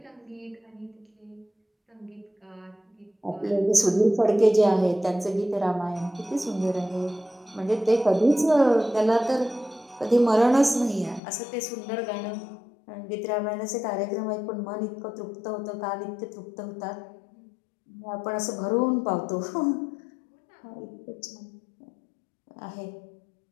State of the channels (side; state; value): right; drops out; at 11.2 s